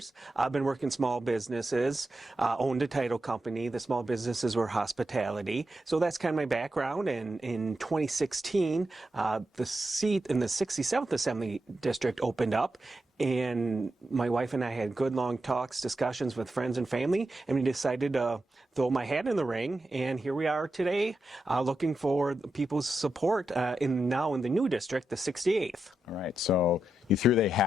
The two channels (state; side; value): normal; both; correlation 0.87